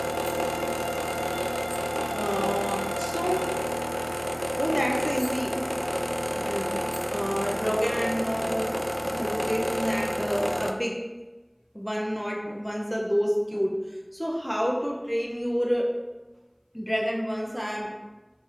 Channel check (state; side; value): identical; both; correlation 1.00